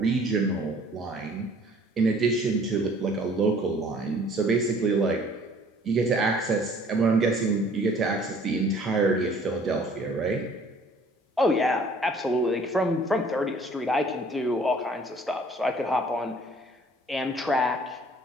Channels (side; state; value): both; normal; correlation 0.55